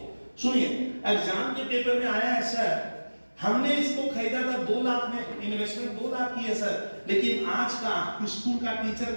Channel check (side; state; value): both; inverted; correlation -1.00